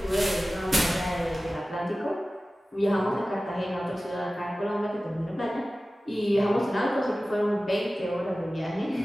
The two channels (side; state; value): both; normal; correlation 0.96